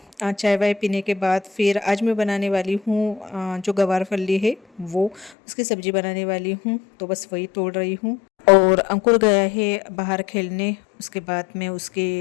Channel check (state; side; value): drops out; right; at 5.3 s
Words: चाय वाय पीने के बाद फिर आज मैं बनाने वाली हूँ जो गवार फली है वो, उसकी सब्ज़ी बनाने वाली हूँ, तो बस वही तोड़ रही हूँ। और अंकुर गया है बाहर खेलने, उसके बाद मैं